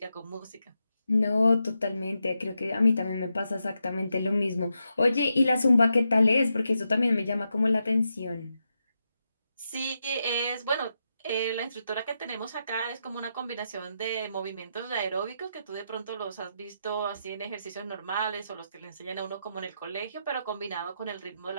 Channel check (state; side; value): inverted; both; correlation -0.85